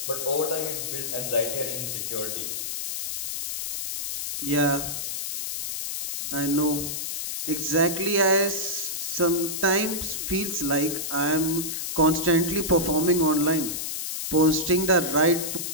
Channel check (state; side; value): noise; left; hiss, 4 dB below the sound